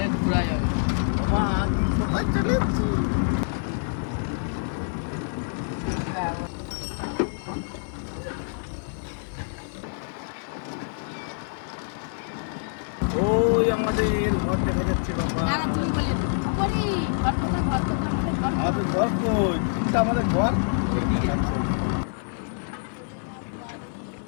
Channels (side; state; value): right; silent; 61 dB below the other